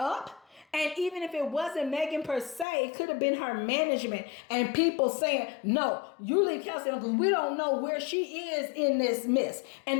And even if it wasn't Megan per se, it could have been her management and people saying, no, you leave Kelsey alone because we don't know where she is in this mess.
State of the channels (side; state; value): right; drops out; at 2.7 s